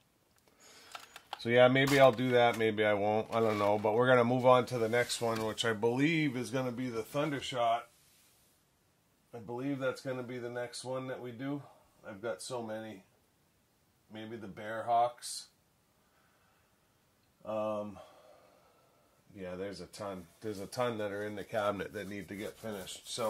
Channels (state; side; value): identical; both; correlation 1.00